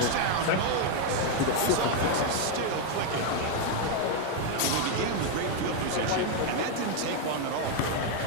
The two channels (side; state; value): both; different; correlation 0.01